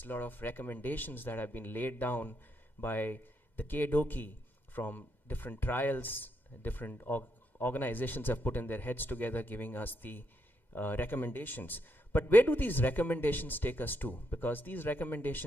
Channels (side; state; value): right; late; 2.1 ms